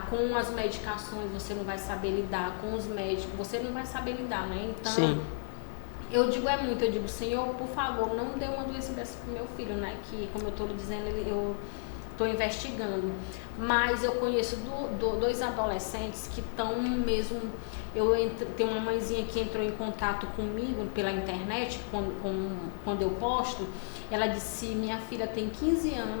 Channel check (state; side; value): silent; right; digital silence